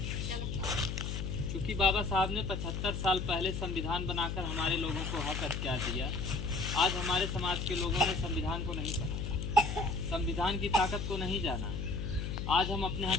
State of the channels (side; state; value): left; noise; hum, 3 dB below the sound